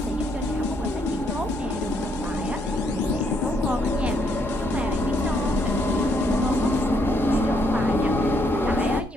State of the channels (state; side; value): normal; both; correlation 0.73